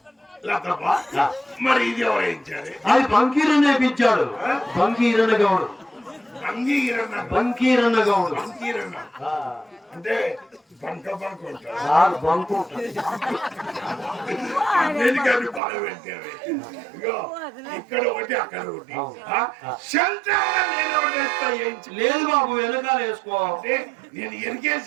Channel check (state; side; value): drops out; left; at 15.6 s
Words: మరి ఇది ఎవరేయించారు? అది బంకీరన్న వేయించాడు. బంకీరన్న గౌడు. బంకీరన్న గౌడు అంటే బంక బంక ఉంటారు. బంకు అన్నిటికీ బాగా పెట్టారు. ఇగో ఇక్కడ ఒకటి, అక్కడ ఒకటి. లేదు బాబు, వెనకాల వేసుకో. నేను